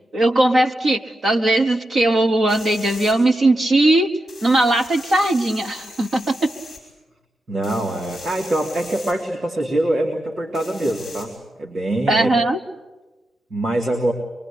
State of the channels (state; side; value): normal; both; correlation 0.88